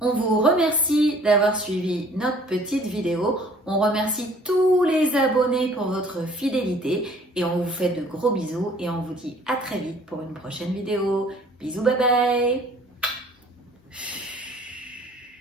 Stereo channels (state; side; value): normal; both; correlation 0.55